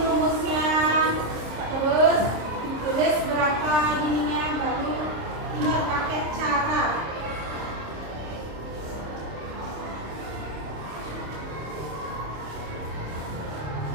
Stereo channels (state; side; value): late; left; 26 ms